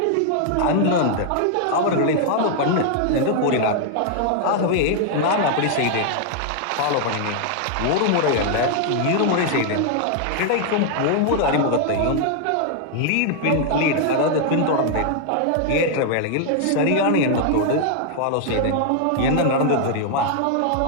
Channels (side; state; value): both; different; correlation 0.00